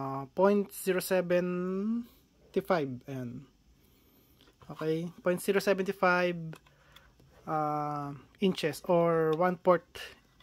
Ayan. Okay, 0.075 inches or 1 port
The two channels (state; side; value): identical; both; correlation 1.00